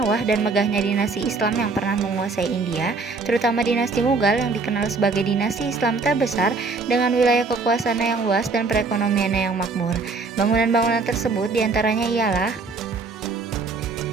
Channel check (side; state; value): left; quieter; 4.0 dB